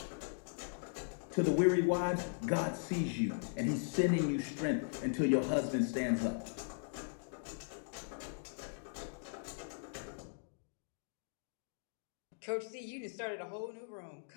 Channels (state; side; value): silent; right; digital silence